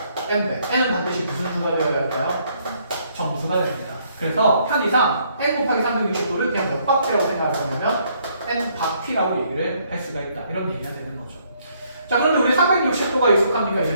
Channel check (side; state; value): both; inverted; correlation -0.68